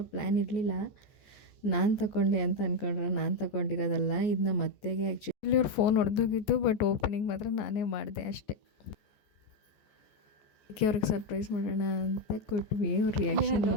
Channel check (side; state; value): right; late; 14 ms